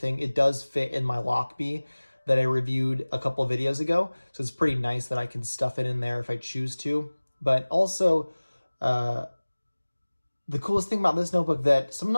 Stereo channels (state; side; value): inverted; both; correlation -1.00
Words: It does fit in my Lockbee that I reviewed a couple videos ago, so it's pretty nice that I can stuff it in there if I choose to. But also, the coolest thing about this notebook that some